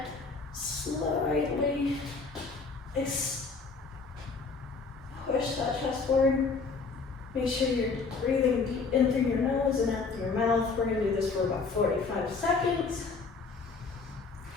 slightly push that chest forward. Make sure you're breathing deep in through your nose and out through your mouth. We're going to do this for about 45 seconds.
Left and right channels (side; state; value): right; quieter; 4.5 dB